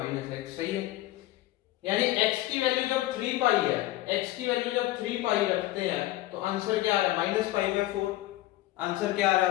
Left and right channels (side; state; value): right; quieter; 16.4 dB